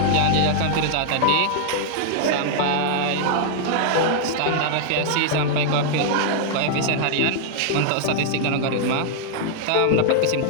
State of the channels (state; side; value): different; both; correlation -0.01